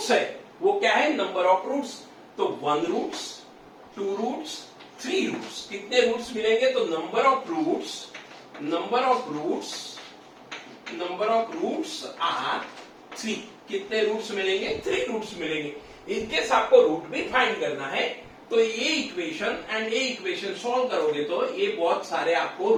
है। वो क्या है, नंबर ऑफ रूट्स। तो 1 रूट्स, 2 रूट्स, 3 रूट्स। कितने रूट्स मिलेंगे, तो नंबर ऑफ रूट्स आर 3। कितने रूट्स मिलेंगे, 3 रूट्स मिलेंगे। इनकेस आपको रूट भी फाइंड करना है तो ये इक्वेशन एंड ये इक्वेशन सॉल्व करोगे तो ये बहुत सारे आपको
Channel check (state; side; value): identical; both; correlation 1.00